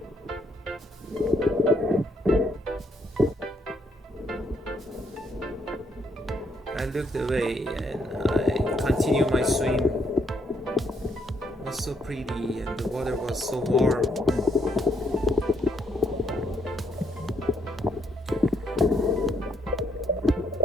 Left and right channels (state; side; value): normal; both; correlation 0.73